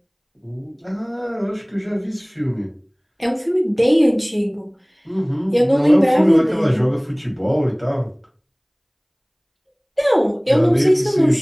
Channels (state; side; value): identical; both; correlation 1.00